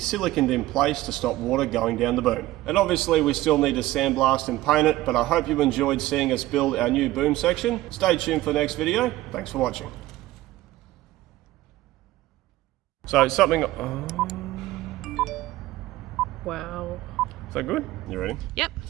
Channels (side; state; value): left; quieter; 16.6 dB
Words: in place to stop water going down the boom. And obviously we still need to sandblast and paint it, but I hope you enjoyed seeing us build our new boom section. Stay tuned for the next video. Thanks for watching. So something... Wow. Is that good? You ready? Yep.